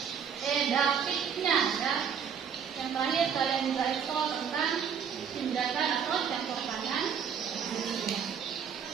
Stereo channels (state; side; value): quieter; left; 7.3 dB